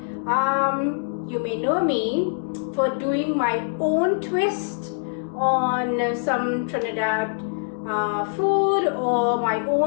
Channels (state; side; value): silent; right; digital silence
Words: You may know me for doing my own twist on some Trinidad food, or my